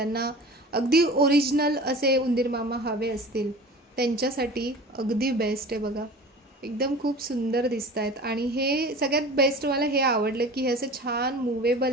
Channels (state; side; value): normal; both; correlation 0.39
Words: अगदी ओरिजिनल असे उंदीर मामा हवे असतील त्यांच्यासाठी अगदी बेस्ट आहे बघा, एकदम खूप सुंदर दिसत आहेत। आणि हे सगळ्यात बेस्ट मला हे आवडलं की हे असं छान